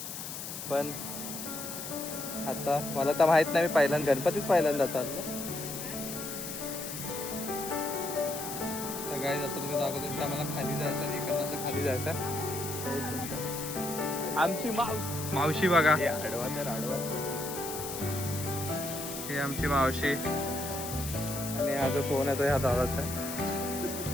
पण आता मला तर माहित नाही, मी पहिल्यांदा गणपतीच पहिल्यांदा चाललो. सगळ्यात आता तुम्ही दाखवतो की आम्हाला खाली जायचं आणि इकडनं खाली जायचं. आमची मावशी बघा, आडवा तर आडवा. ही आमची मावशी आणि हा जो फोन आहे तो ह्या दादाचा आहे.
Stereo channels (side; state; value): left; noise; hiss, 7 dB below the sound